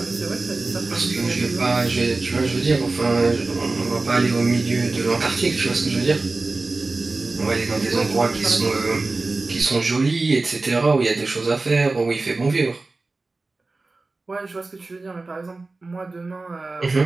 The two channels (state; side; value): quieter; left; 3.5 dB